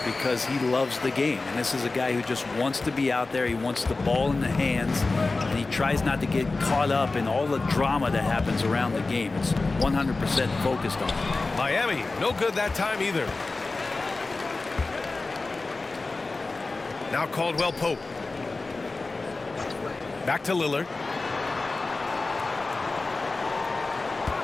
because he loves the game, and this is a guy who just wants to be out there. He wants the ball in the hands, and he tries not to get caught up in all the drama that happens around the game. It's 100% focused on it. Miami, no good that time either. Now Caldwell Pope. Back to Lillard.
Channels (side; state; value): right; quieter; 3.5 dB